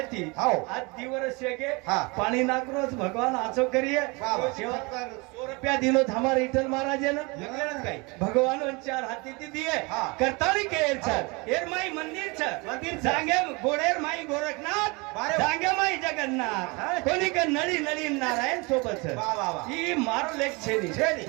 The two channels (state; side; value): quieter; left; 27.4 dB